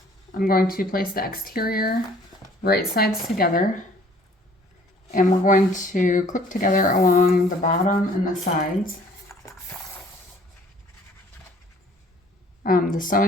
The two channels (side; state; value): both; normal; correlation 0.56